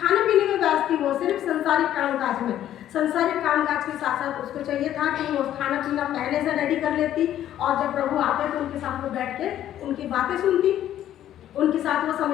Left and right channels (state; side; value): quieter; right; 11.7 dB